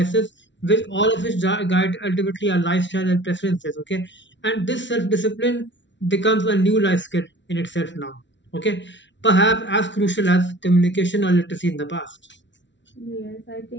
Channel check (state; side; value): late; right; 0.53 ms